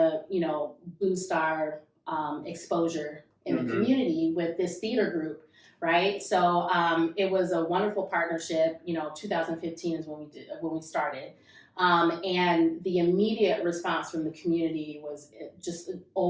boost our exposure in the community with this theater group. Right. So it was a wonderful partnership. 2015 is when we started. And the immediate response from the community was just an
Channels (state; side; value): identical; both; correlation 1.00